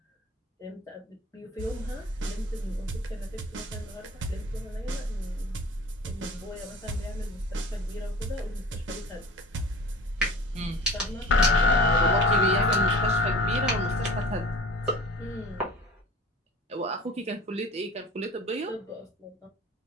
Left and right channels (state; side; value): normal; both; correlation 0.42